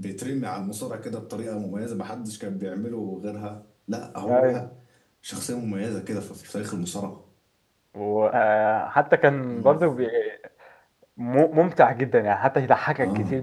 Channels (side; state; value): both; identical; correlation 1.00